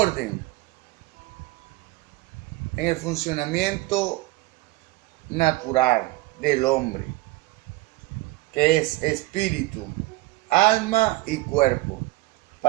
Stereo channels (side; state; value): left; quieter; 19.6 dB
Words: en el funcionamiento natural del hombre, que es espíritu, alma y cuerpo.